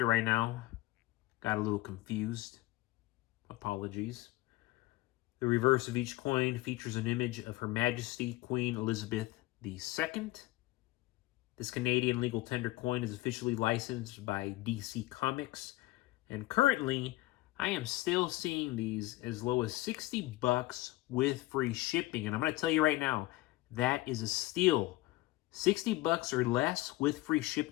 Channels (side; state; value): right; quieter; 18.6 dB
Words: it right now. Got a little confused. Apologies. The reverse of each coin features an image of Her Majesty Queen Elizabeth II. This Canadian legal tender coin is officially licensed by DC Comics, and currently I am still seeing these as low as $60 with free shipping. And I'm going to tell you right now, that is a steal. $60 or less with free